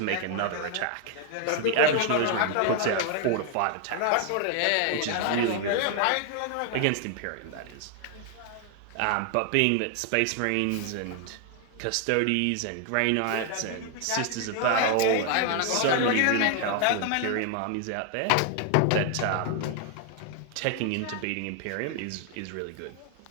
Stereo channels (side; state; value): both; different; correlation 0.00